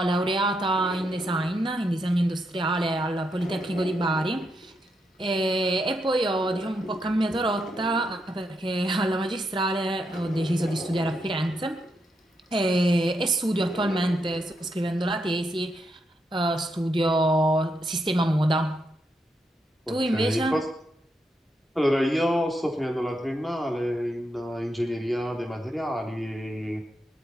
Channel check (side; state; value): both; normal; correlation 0.81